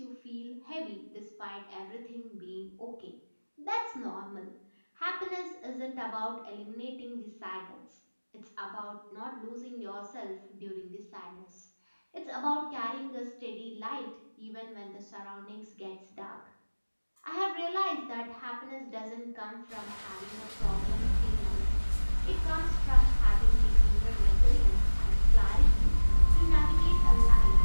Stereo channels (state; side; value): inverted; both; correlation -1.00